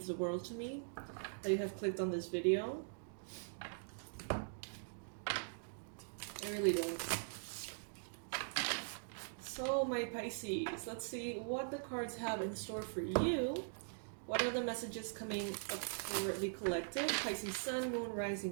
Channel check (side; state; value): left; silent; digital silence